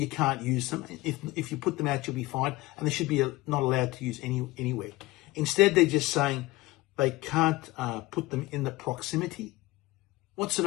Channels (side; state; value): right; quieter; 20.1 dB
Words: can't use them. If you put them out, you'll be fined, and they should be not allowed to use anywhere. Instead, they're just saying they can't put them in the proximity. What sort